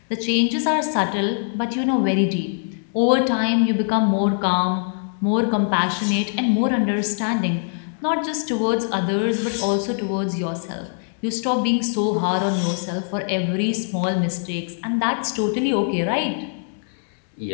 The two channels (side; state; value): right; silent; 64 dB below the other